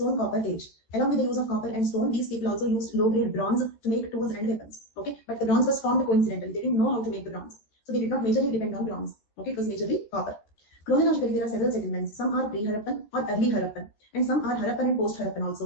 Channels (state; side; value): late; right; 14 ms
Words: copper age. Along with the use of copper and stone, these people also used low-grade bronze to make tools and weapons. Okay. But the bronze was formed coincidentally. They didn't know how to make the bronze. So they did not majorly depend on bronze. Okay. It was majorly copper. Chronologically, there are several settlements. Some are pre-Harappan or early Harappan, and some are Harappan and post-Harappan